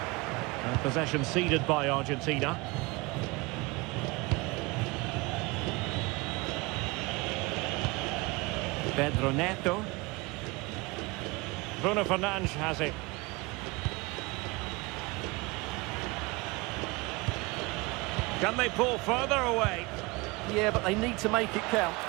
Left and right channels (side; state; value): left; quieter; 24.8 dB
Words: And possession ceded by Argentina. Pedro Neto. Bruno Fernandes has it. Can they pull further away? Yeah, but they need to make it count.